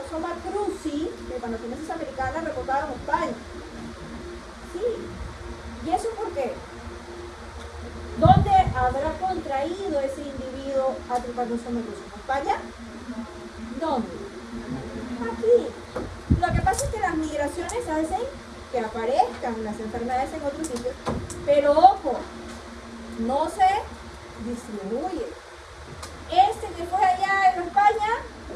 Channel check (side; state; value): both; identical; correlation 1.00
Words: cruzi, Trypanosomiasis americana, reportado en España. Sí. ¿Y eso por qué? ¿Dónde habrá contraído ese individuo a Trypanosoma cruzi? ¿En España? ¿Dónde? Aquí. Lo que pasa es que las migraciones hacen que aparezcan las enfermedades en otros sitios, pero ojo, no se distribuye. Este que fue allá en España